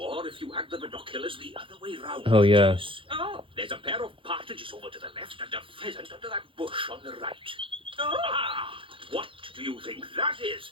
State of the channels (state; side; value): late; left; 0.25 ms